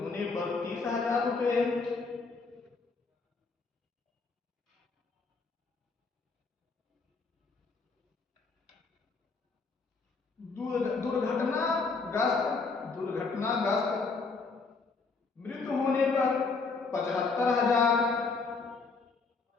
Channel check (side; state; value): right; quieter; 4.3 dB